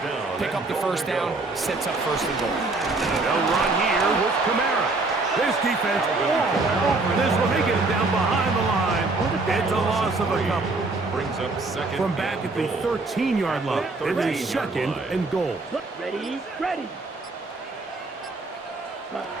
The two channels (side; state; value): left; quieter; 3.4 dB